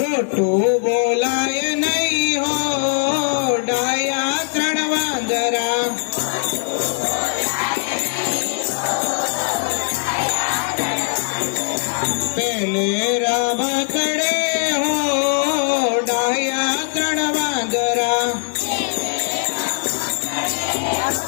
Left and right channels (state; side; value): silent; right; 62 dB below the other